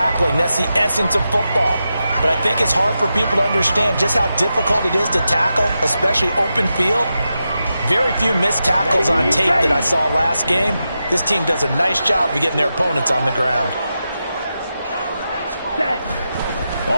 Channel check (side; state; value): both; inverted; correlation -0.89